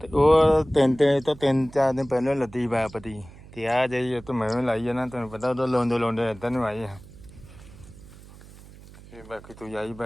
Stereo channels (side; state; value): right; noise; hum, 20 dB below the sound